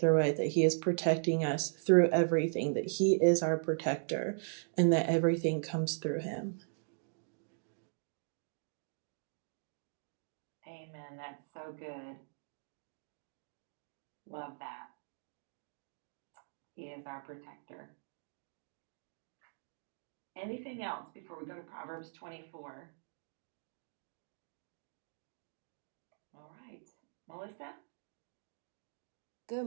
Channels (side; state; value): left; silent; digital silence